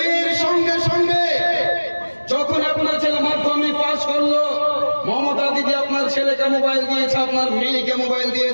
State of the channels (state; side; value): inverted; both; correlation -1.00